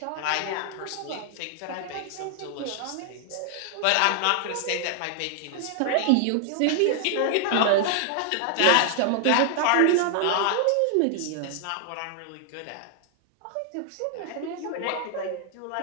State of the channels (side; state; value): both; different; correlation 0.00